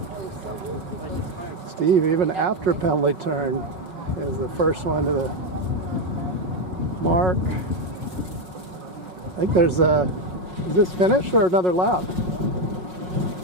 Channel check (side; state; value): left; late; 5.5 ms